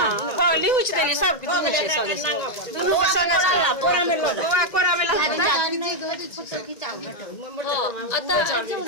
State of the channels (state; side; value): late; right; 1.9 ms